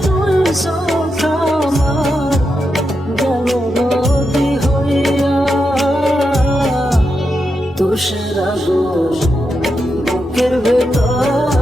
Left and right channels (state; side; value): normal; both; correlation 0.86